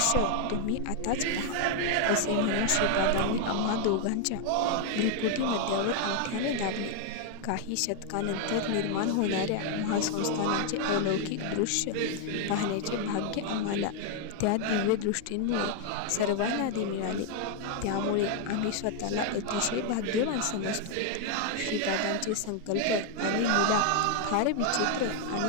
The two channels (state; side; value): different; both; correlation 0.00